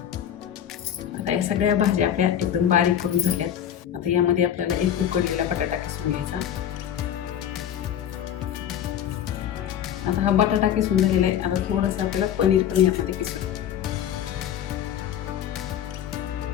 आता या सगळ्या भाज्या आपल्या एकदम बारीक करून झाल्यात. आता यामध्ये आपल्याला एक उकडलेला बटाटा किसून घ्यायचा. आता हा बटाटा किसून झालेला आहे. आता थोडंसं आपल्याला पनीर पण यामध्ये किसून,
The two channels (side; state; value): right; quieter; 9.9 dB